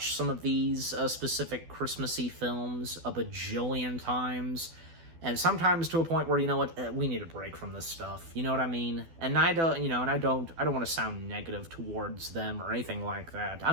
some of these specific Christmassy films a bajillion times, and sometimes to a point where, we need a break from this stuff. You know what I mean? And I don't, I don't want to sound negative towards them or anything like that.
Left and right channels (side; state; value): left; late; 12 ms